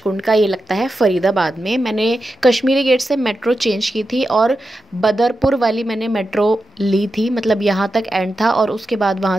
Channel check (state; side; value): normal; both; correlation 0.89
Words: का, ये लगता है फरीदाबाद में। मैंने कश्मीरी गेट से मेट्रो चेंज की थी और बदरपुर वाली मैंने मेट्रो ली थी, मतलब यहाँ तक एंड था। और उसके बाद वहाँ